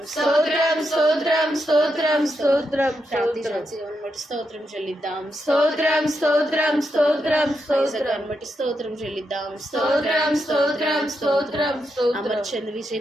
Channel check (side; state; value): both; normal; correlation 0.83